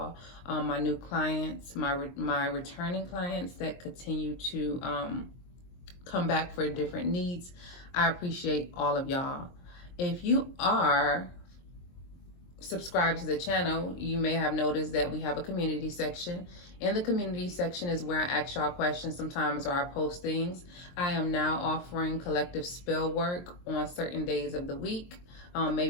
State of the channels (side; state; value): right; late; 23 ms